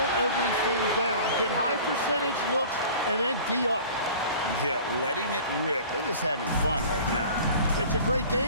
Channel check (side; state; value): both; inverted; correlation -0.43